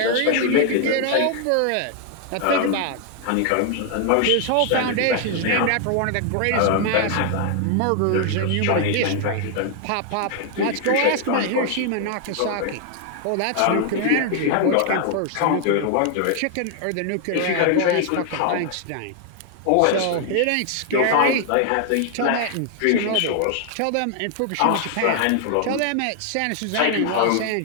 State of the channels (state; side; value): different; both; correlation 0.00